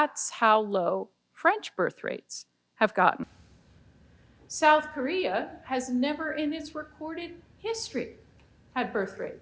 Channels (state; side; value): identical; both; correlation 1.00